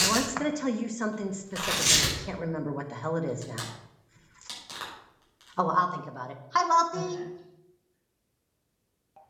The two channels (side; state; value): both; identical; correlation 1.00